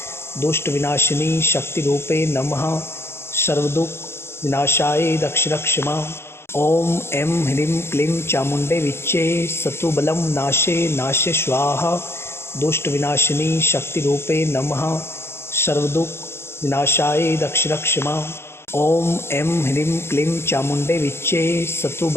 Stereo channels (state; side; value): late; right; 0.12 ms